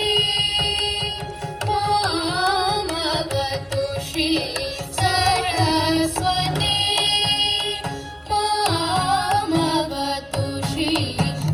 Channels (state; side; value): identical; both; correlation 1.00